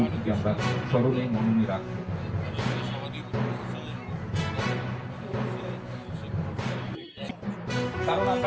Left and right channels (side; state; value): both; identical; correlation 1.00